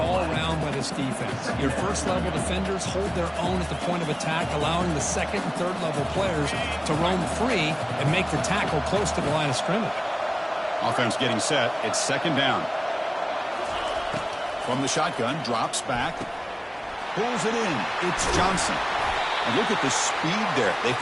around by this defense. Your first-level defenders hold their own at the point of attack, allowing the second and third-level players to roam free and make the tackle close to the line of scrimmage. Offense getting set. It's second down. From the shotgun, drops back. Pulls it in. It's Johnson. And look at the speed there. They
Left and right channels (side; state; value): both; identical; correlation 1.00